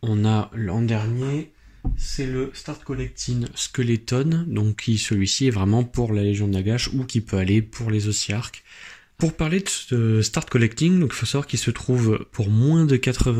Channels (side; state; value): both; identical; correlation 1.00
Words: on a l'an dernier, c'est le Start Collecting Skeleton, donc qui celui-ci est vraiment pour la Légion de Nagash ou qui peut aller pour les Ossiarchs. Pour parler de ce Start Collecting, donc il faut savoir qu'il se trouve pour moins de